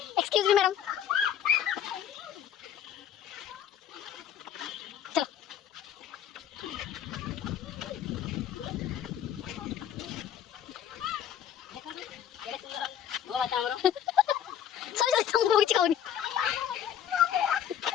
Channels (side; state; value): right; quieter; 9.7 dB